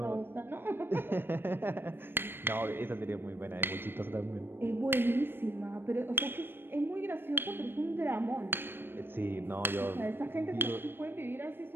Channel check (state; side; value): late; left; 0.10 ms